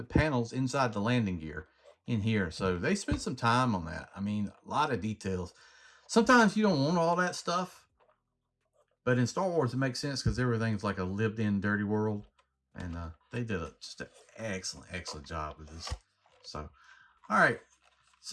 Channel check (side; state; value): both; identical; correlation 1.00